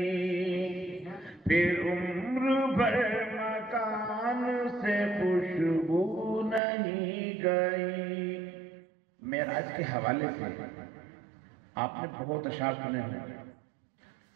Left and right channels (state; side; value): drops out; left; at 6.6 s